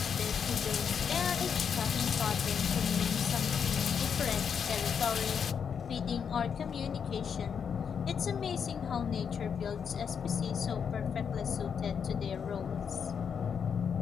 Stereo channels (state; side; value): quieter; right; 7.0 dB